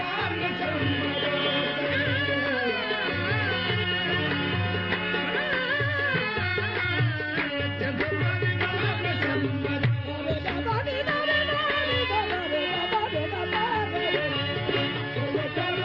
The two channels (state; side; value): identical; both; correlation 1.00